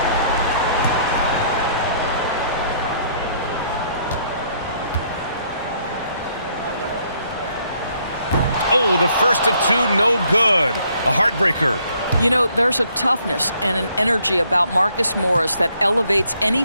Oh, the first of 2, no good. A heartbreaker. You know, there's a toughness and an energy about Marcus Morris that elevates any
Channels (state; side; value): inverted; both; correlation -0.67